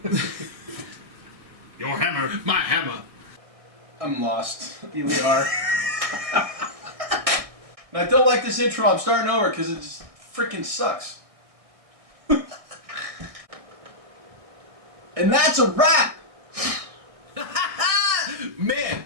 Your hammer. My hammer. I'm lost. Here we are. And I don't like this intro. I'm starting over because it just freaking sucks. And that's a wrap. Man,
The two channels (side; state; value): left; late; 1.6 ms